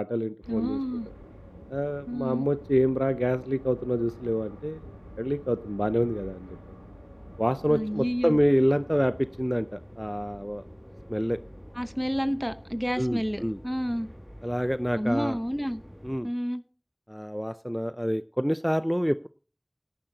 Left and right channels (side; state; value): both; identical; correlation 1.00